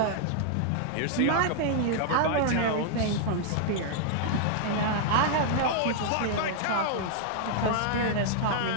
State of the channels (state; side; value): different; both; correlation -0.01